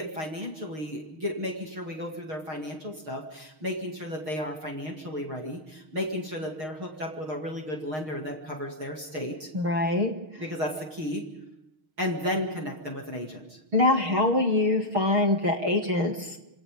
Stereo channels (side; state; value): left; late; 6.4 ms